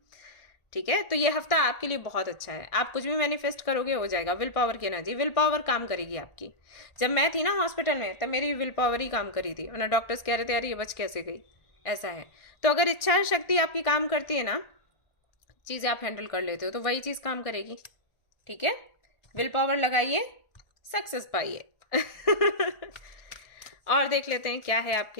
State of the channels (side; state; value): right; late; 1.4 ms